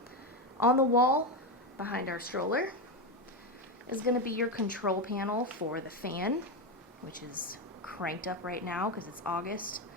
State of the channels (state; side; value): normal; both; correlation 0.12